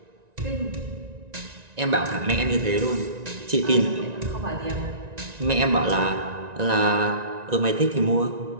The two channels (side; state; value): left; late; 1.9 ms